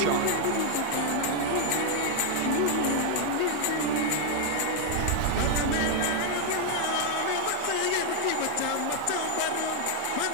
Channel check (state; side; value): different; both; correlation 0.00